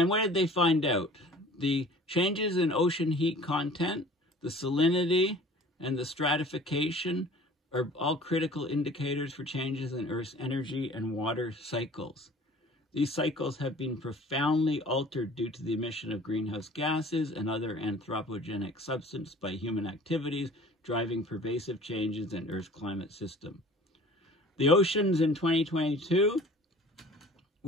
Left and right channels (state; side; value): normal; both; correlation 0.47